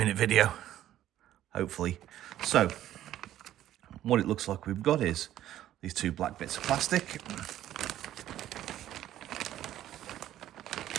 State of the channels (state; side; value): quieter; left; 12.6 dB